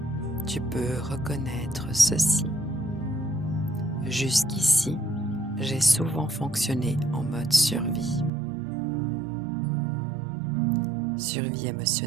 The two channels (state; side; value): drops out; left; at 8.3 s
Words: tu peux reconnaître ceci. Jusqu'ici, j'ai souvent fonctionné en mode survie. Survie